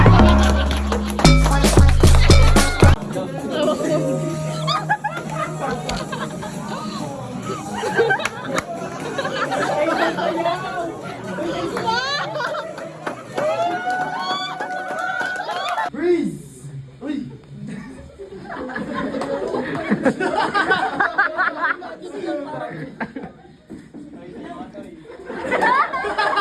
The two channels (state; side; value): identical; both; correlation 1.00